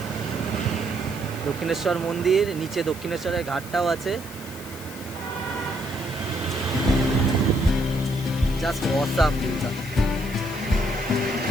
দক্ষিণেশ্বর মন্দির, নিচে দক্ষিণেশ্বরের ঘাটটাও আছে, জাস্ট অসাম ভিউটা।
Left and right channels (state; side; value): noise; left; hiss, 16 dB below the sound